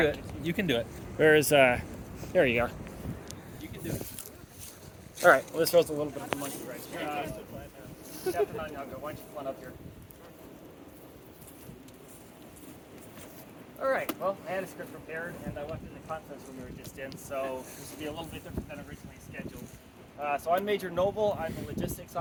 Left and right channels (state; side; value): identical; both; correlation 1.00